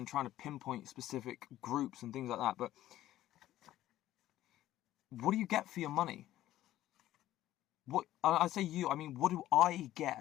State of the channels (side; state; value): right; quieter; 13.9 dB